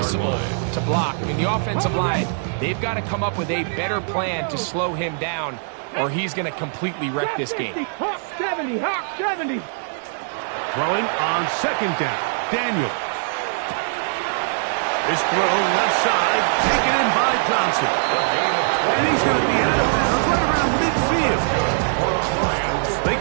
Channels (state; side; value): silent; left; 64 dB below the other